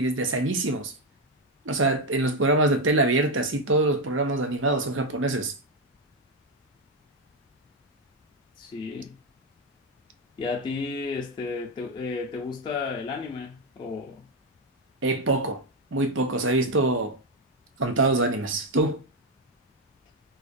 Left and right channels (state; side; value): normal; both; correlation 0.07